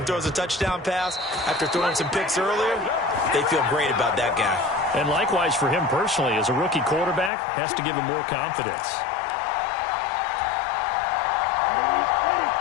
throws a touchdown pass after throwing some picks earlier, they feel great about that guy. And likewise for him personally, as a rookie quarterback, has to give him more confidence.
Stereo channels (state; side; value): drops out; right; at 7.3 s